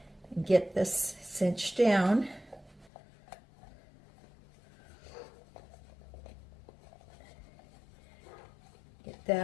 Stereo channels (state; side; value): drops out; right; at 2.9 s